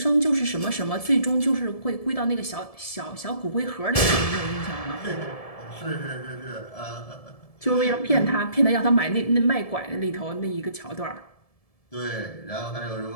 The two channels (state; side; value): late; right; 1.7 ms